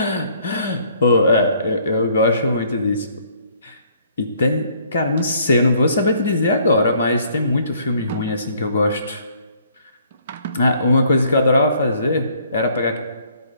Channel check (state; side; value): inverted; both; correlation -0.62